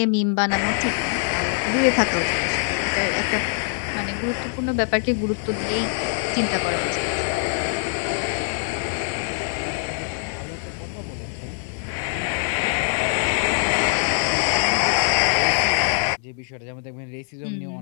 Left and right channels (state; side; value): silent; right; digital silence